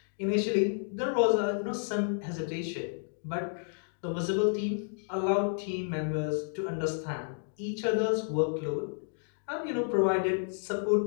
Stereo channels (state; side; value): silent; right; digital silence